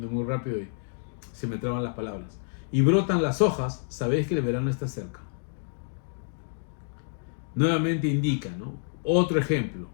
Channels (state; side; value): silent; right; digital silence